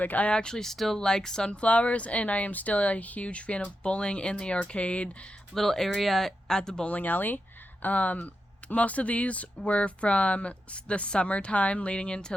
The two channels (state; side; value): normal; both; correlation 0.88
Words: I actually still like sunflowers, and I am still a huge fan of bowling in the arcade little area at the bowling alley. Most of these were from the summertime leading into